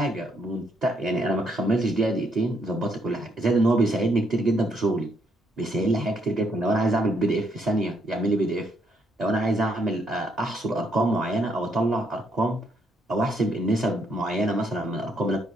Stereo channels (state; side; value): normal; both; correlation 0.73